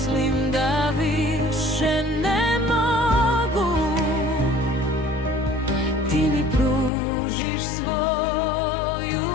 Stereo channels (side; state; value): right; drops out; at 6.9 s